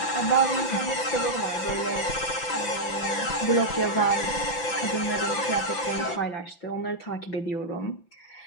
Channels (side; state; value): right; late; 5.9 ms